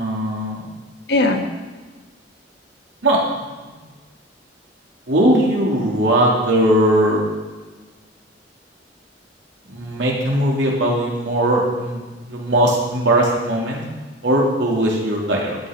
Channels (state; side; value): normal; both; correlation 0.31